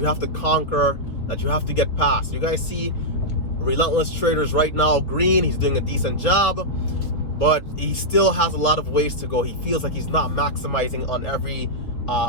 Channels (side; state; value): right; late; 4.6 ms